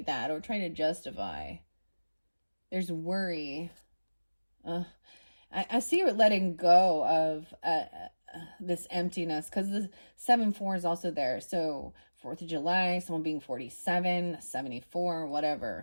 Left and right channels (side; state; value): both; inverted; correlation -1.00